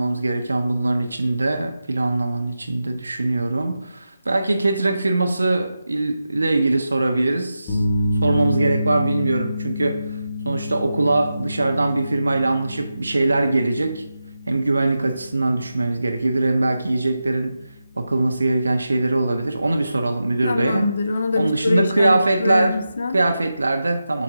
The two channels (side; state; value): both; inverted; correlation -0.90